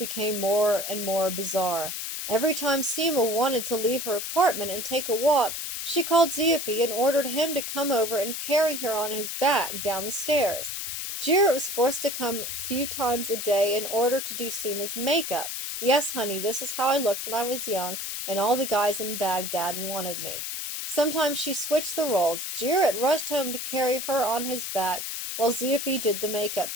more and more bizarre. Every time Seema wanted to leave her apartment and take a walk, she called Zippy and ordered him to come over and carry her on his back down the stairs. Jarrett was forced to come a few times a day in order to do Seema's makeup. "Yes, honey, this is how I looked when I was young, and all the guys in Baghdad wanted me." Sometimes she switched the roles. Jarrett rushed home to carry her on his back, while Zippy did the makeup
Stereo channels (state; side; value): noise; left; hiss, 5 dB below the sound